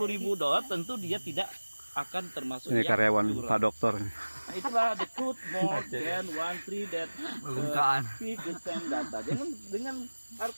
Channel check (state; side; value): inverted; both; correlation -1.00